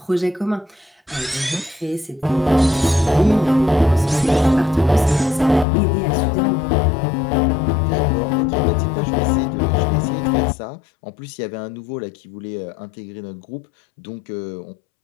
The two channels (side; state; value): right; drops out; at 5.7 s